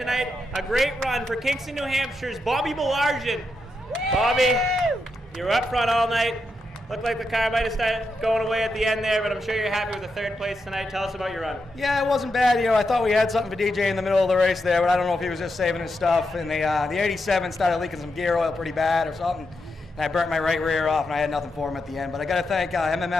A great run for Kingston, New Hampshire's Bobby Belargin. Bobby, you were up front all night. Looked like the car might have started going away at the end there, but I'm sure you're happy with the 3rd place tonight. Tell us about your run. Yeah, it wasn't bad. I thought we had something for DJ in the middle of the race there, but I don't know if he was just saving his stuff. And the 87 started leaking some gear oil pretty bad or something. And I burnt my right rear off, and I had nothing for him at the end. But I got to thank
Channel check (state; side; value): normal; both; correlation 0.85